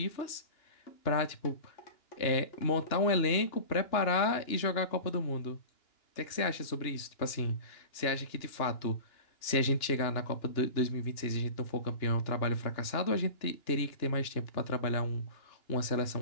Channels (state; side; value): late; right; 2.9 ms